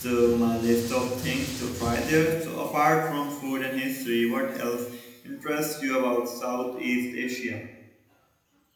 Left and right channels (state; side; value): identical; both; correlation 1.00